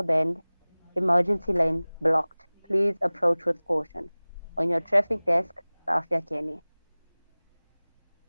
Bend. Emergency lane blocked. Please approach with caution. On your traffic desk, Safia Kenny.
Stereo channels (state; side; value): inverted; both; correlation -1.00